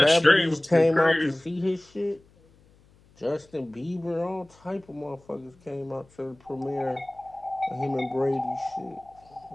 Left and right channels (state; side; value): noise; left; hum, 30 dB below the sound